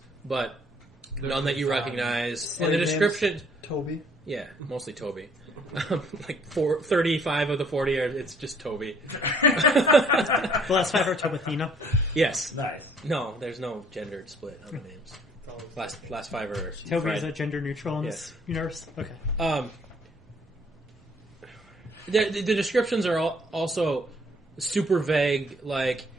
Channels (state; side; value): normal; both; correlation 0.61